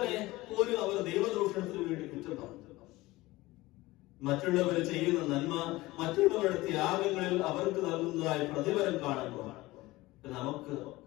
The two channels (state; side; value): quieter; right; 19.5 dB